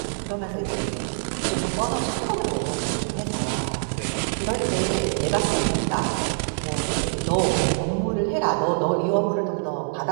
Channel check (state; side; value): silent; left; 62 dB below the other